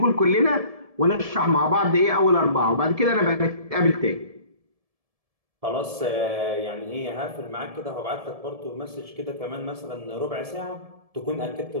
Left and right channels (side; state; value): left; late; 1.7 ms